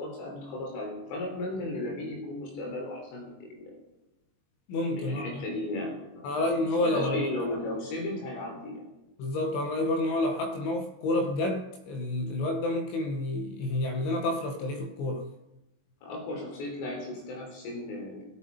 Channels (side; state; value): right; late; 21 ms